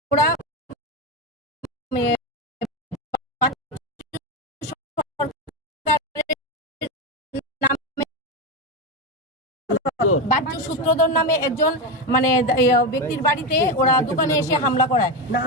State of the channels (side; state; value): both; normal; correlation 0.13